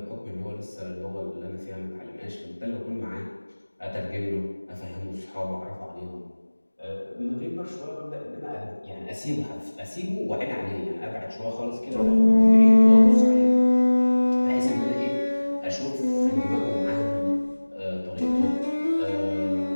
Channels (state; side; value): inverted; both; correlation -1.00